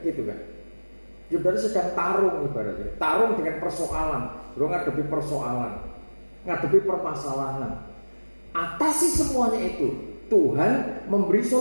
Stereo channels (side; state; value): both; inverted; correlation -1.00